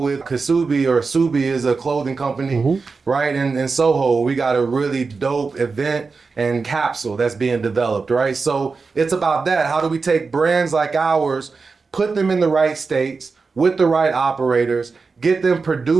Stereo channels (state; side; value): quieter; left; 4.5 dB